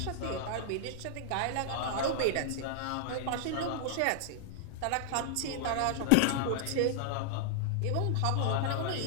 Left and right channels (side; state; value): both; different; correlation -0.01